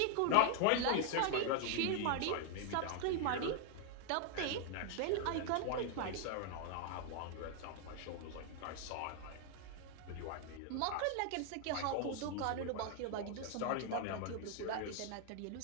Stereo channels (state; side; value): different; both; correlation 0.00